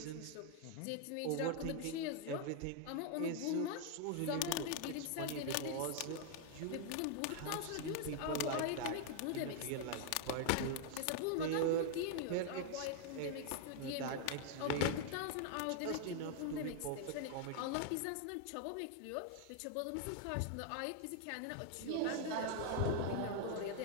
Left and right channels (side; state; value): both; different; correlation 0.00